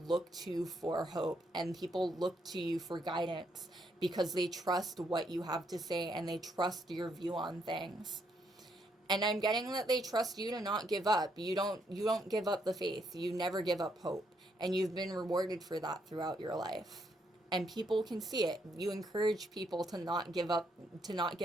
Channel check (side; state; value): both; normal; correlation 0.75